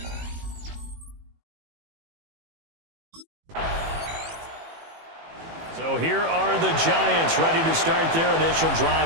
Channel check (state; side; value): late; left; 18 ms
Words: So here are the Giants ready to start their initial